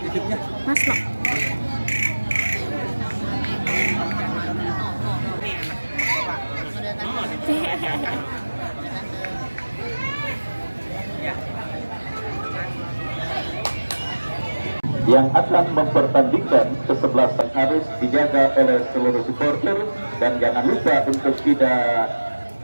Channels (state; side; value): inverted; both; correlation -1.00